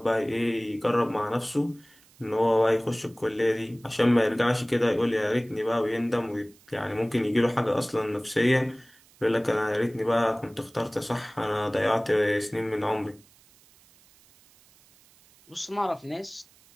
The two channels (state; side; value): noise; right; hiss, 29 dB below the sound